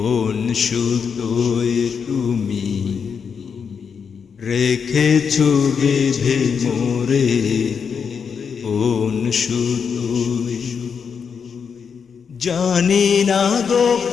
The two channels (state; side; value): quieter; right; 6.4 dB